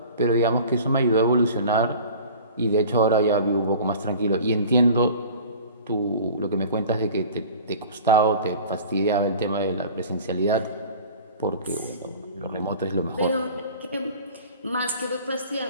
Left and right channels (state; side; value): inverted; both; correlation -0.42